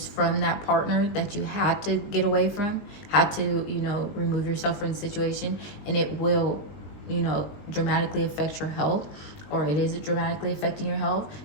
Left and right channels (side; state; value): right; late; 20 ms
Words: from that partner that you had to get away from, had to, remove yourself from the situation, and it will, dramatically affect your health, or it is dramatically affecting your health.